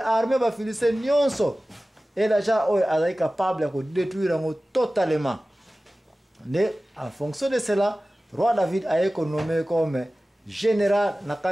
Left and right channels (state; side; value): normal; both; correlation 0.97